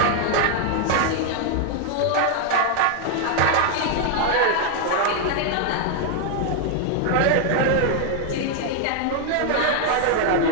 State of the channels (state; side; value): different; both; correlation 0.01